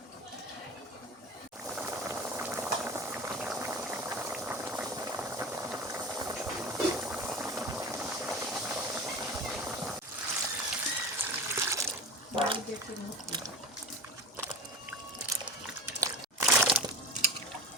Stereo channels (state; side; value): normal; both; correlation 0.31